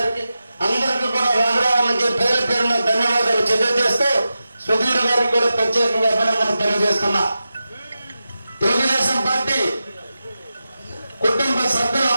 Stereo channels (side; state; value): both; inverted; correlation -0.92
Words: అందరికీ కూడా రామరావుకి పేరు పేరున ధన్యవాదాలు తెలియజేస్తూ సుధీర్ గారికి కూడా ప్రత్యేకంగా అభినందనలు తెలియజేస్తున్నా. తెలుగుదేశం పార్టీ కుటుంబ